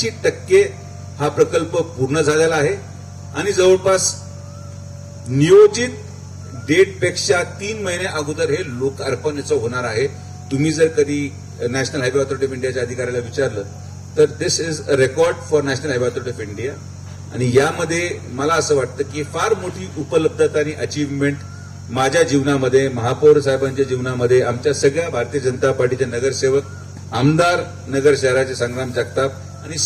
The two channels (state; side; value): identical; both; correlation 1.00